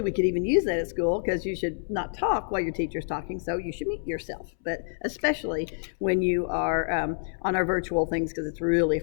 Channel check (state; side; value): silent; right; 60 dB below the other